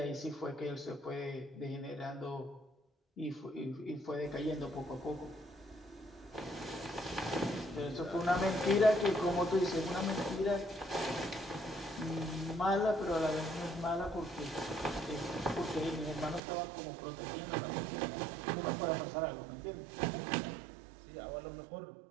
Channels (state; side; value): drops out; left; at 16.4 s